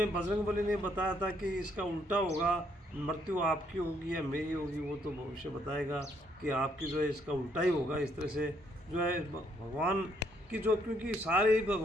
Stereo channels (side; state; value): both; normal; correlation 0.70